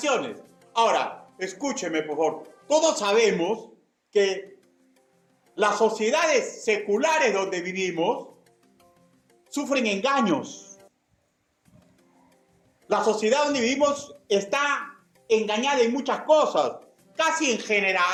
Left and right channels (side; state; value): both; identical; correlation 1.00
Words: Ahora, escúcheme, por favor. Todos sabemos que las sociedades seculares donde vivimos sufren engaños. La sociedad donde vivimos está engañada en muchas cosas. Casi en